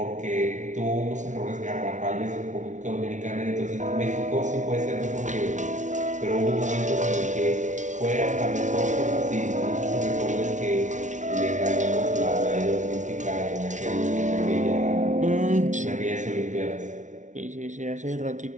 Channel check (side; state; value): left; late; 0.36 ms